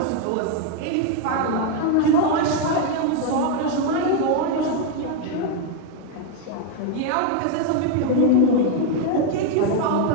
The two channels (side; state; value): both; different; correlation 0.01